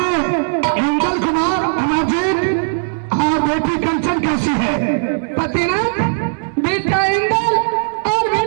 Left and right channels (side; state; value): left; silent; 68 dB below the other